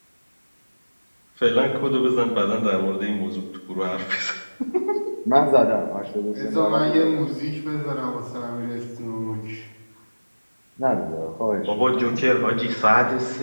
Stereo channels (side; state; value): both; inverted; correlation -1.00